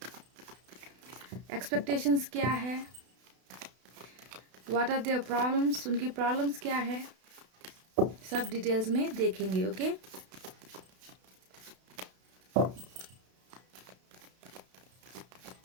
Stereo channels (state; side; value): late; left; 32 ms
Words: expectations क्या है, what are their problems, उनकी प्रॉब्लम्स क्या है, सब डिटेल्स में देखेंगे। ओके,